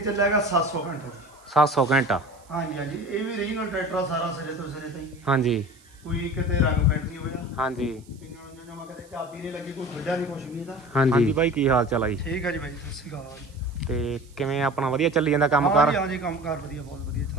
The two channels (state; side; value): noise; right; hiss, 28 dB below the sound